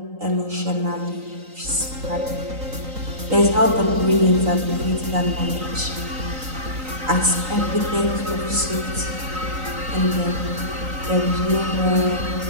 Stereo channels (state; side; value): late; left; 3.9 ms